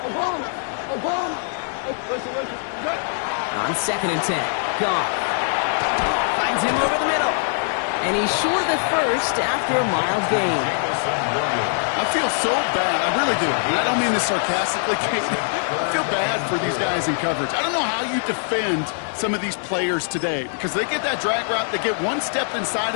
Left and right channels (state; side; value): silent; right; digital silence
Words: On 2nd and 10. Goff finds him over the middle. And he's short of the 1st after a mild gain. I feel so bad. I really do. And I don't mean this sarcastically. I feel bad for these guys in coverage. I don't know how you defend some of these players today, because they get that drag route, they get 1 step inside